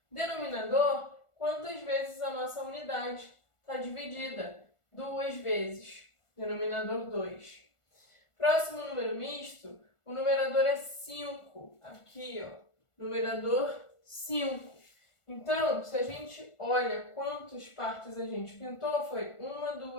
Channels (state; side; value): late; right; 1.4 ms